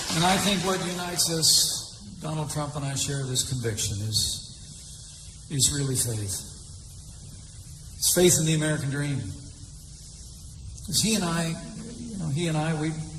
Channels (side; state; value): both; identical; correlation 1.00